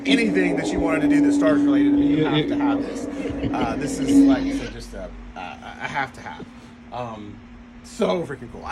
anything that you wanted to do that's Star Wars related, you have to have this. This is, like I said, just a have to have. So freaking cool.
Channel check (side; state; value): both; identical; correlation 1.00